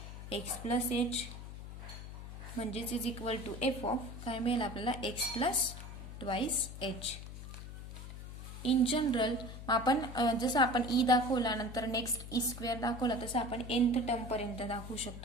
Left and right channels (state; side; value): noise; left; hum, 11 dB below the sound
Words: x plus H म्हणजेच is equal to F of काय मिळेल आपल्याला, X plus twice H. In general आपण जसं आपण ई दाखवला नंतर नेक्स्ट ई स्क्वेअर दाखवला तसं आपण nth टर्म पर्यंत दाखवू